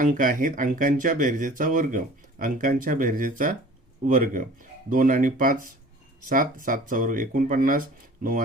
आहेत अंकांच्या बेरजेचा वर्ग, अंकांच्या बेरजेचा वर्ग. 2 आणि 5 7, 7चा वर्ग 49, 9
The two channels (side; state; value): both; normal; correlation 0.46